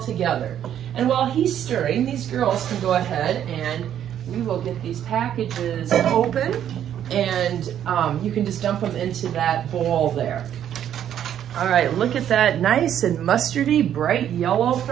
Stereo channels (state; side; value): quieter; left; 10.2 dB